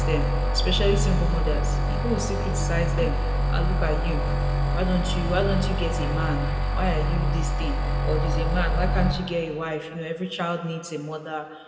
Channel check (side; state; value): both; identical; correlation 1.00